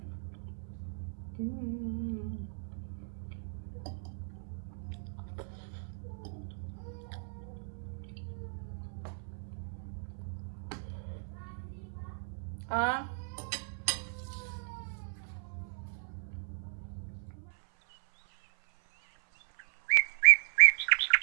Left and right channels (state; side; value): silent; left; 54 dB below the other